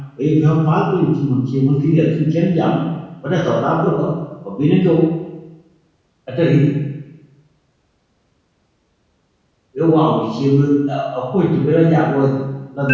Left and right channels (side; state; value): both; identical; correlation 1.00